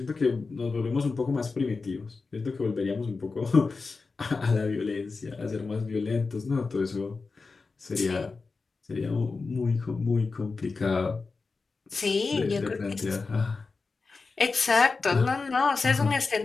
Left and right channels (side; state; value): right; quieter; 4.2 dB